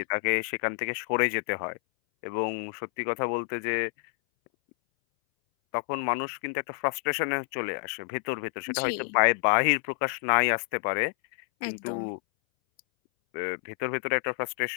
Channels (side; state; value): right; silent; 59 dB below the other